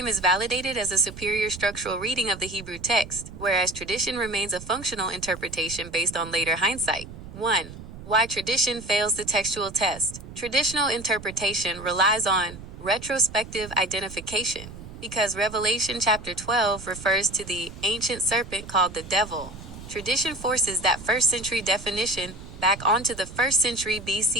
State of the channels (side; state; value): right; noise; rumble, 14 dB below the sound